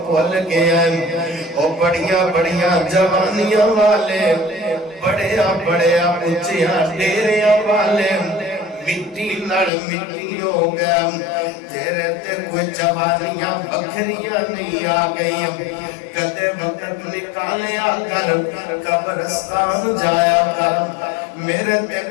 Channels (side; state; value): right; drops out; at 9.7 s